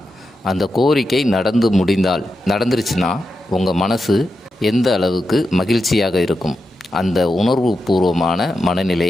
அந்த கோரிக்கை நடந்துருச்சுன்னா உங்கள் மனசு எந்த அளவுக்கு மகிழ்ச்சியாக இருக்கும், அந்த உணர்வு பூர்வமான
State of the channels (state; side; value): normal; both; correlation 0.88